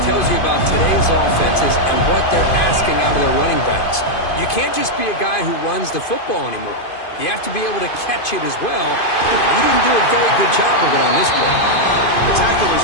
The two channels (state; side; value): late; right; 2.5 ms